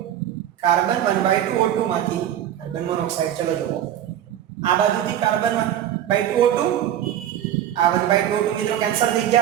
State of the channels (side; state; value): left; quieter; 11.1 dB